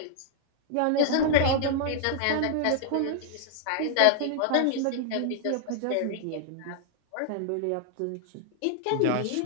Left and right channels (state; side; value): different; both; correlation -0.01